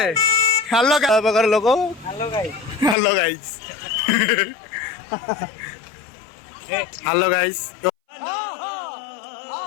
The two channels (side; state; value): right; drops out; at 3.0 s